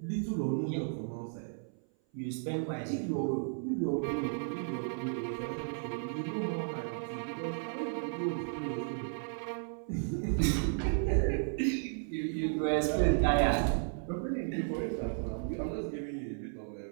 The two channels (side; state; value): left; silent; 55 dB below the other